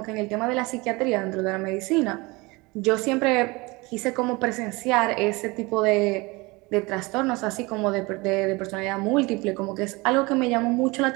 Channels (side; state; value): left; quieter; 24.5 dB